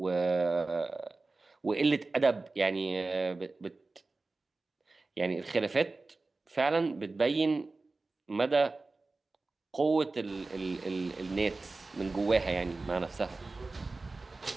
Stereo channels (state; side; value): quieter; left; 3.5 dB